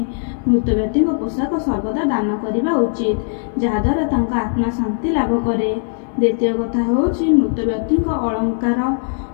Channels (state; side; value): silent; right; digital silence